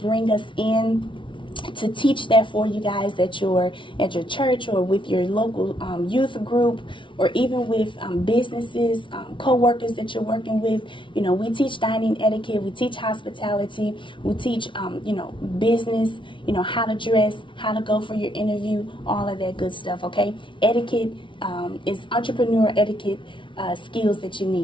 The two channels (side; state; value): right; late; 0.24 ms